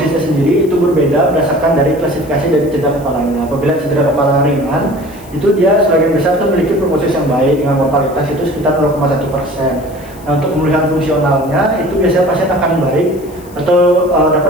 sendiri itu berbeda berdasarkan dari klasifikasi dari cedera kepalanya. Apabila cedera kepala ringan, itu dia sebagian besar itu memiliki prognosis yang baik dengan mortalitas itu sekitar 0,1%. Nah, untuk pemulihan fungsionalnya itu biasanya pasien akan baik atau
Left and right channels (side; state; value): left; noise; hiss, 24 dB below the sound